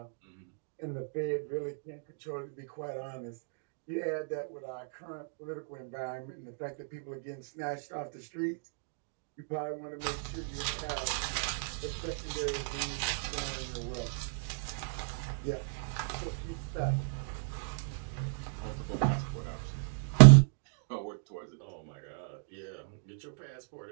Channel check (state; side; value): silent; left; digital silence